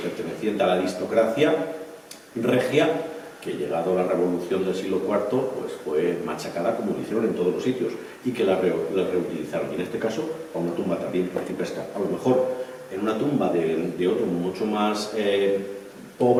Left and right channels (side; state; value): both; identical; correlation 1.00